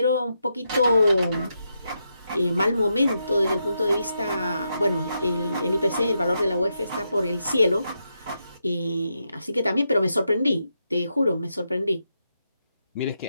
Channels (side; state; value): both; inverted; correlation -0.83